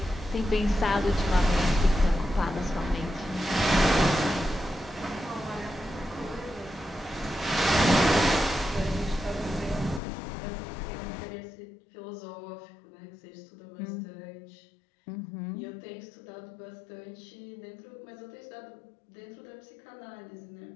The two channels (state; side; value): drops out; right; at 10.0 s